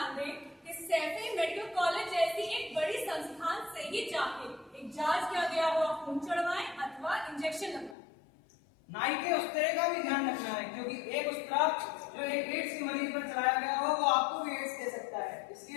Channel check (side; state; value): right; drops out; at 8.0 s